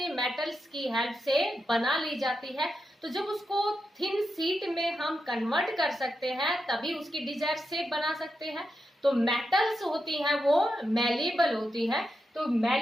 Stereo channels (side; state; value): both; normal; correlation 0.87